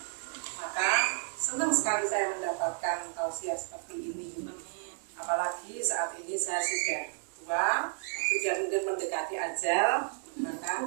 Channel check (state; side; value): silent; left; digital silence